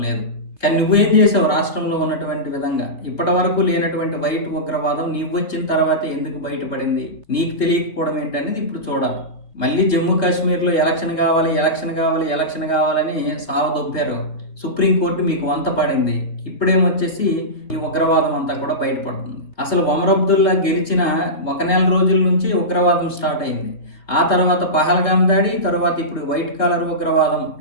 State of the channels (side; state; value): right; late; 3.5 ms